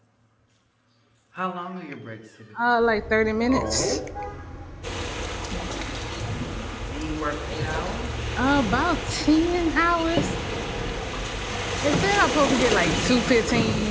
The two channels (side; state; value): both; identical; correlation 1.00